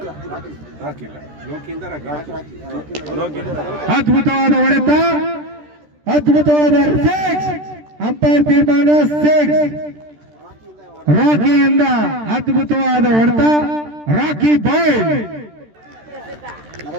ಅದ್ಭುತವಾದ ಹೊಡೆತ, ಅದ್ಭುತವಾದ ಸಿಕ್ಸ್. ಅಂಪೈರ್ ತೀರ್ಮಾನ 6. ರಾಕಿಯಿಂದ ಅದ್ಭುತವಾದ ಹೊಡೆತ. ರಾಕಿ ಬಾಯ್.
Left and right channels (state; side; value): late; left; 13 ms